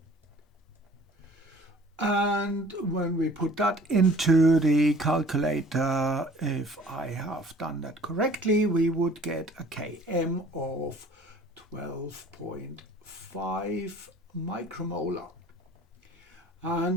And when we put that into the calculator, if I have done that correctly, we would get a Km of 12.5 micromolar.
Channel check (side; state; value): both; normal; correlation 0.51